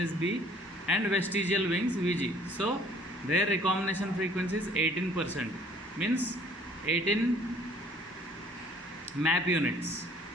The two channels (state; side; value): normal; both; correlation 0.56